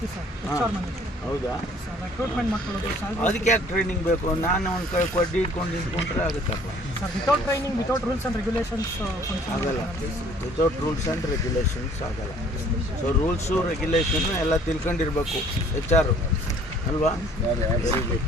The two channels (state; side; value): normal; both; correlation 0.56